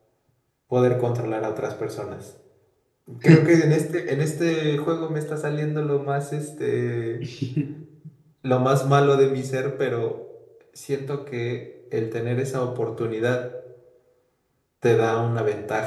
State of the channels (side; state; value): both; identical; correlation 1.00